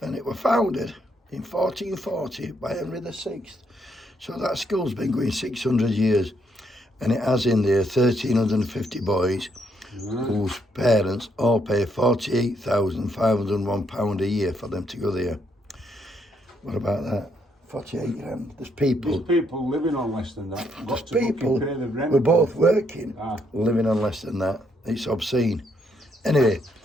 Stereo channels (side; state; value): both; normal; correlation 0.74